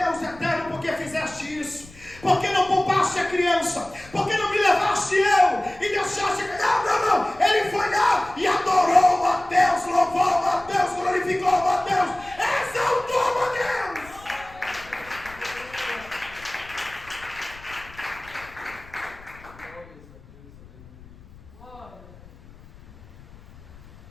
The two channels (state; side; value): noise; left; rumble, 21 dB below the sound